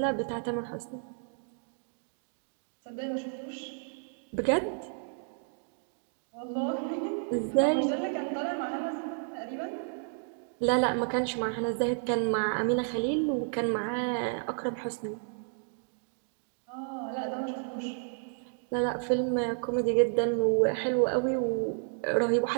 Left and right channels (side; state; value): left; silent; 57 dB below the other